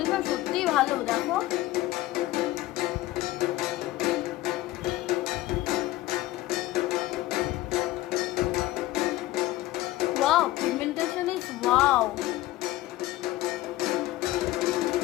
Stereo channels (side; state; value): right; quieter; 16.5 dB